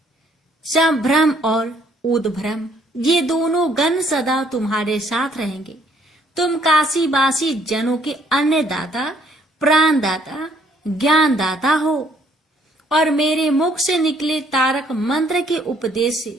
संभ्रम और उद्भ्रम, ये दोनों गण सदा तुम्हारे साथ रहेंगे। तुम काशीवासी जनों के अन्नदाता, प्राणदाता, ज्ञानदाता हो और मेरे मुख से निकले तारक मंत्र के उपदेश से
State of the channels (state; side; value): normal; both; correlation 0.64